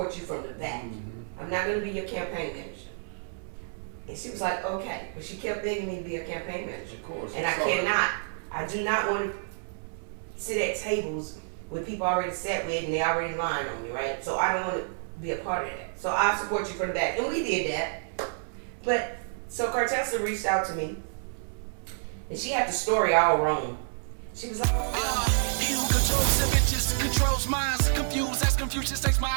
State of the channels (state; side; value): silent; left; 59 dB below the other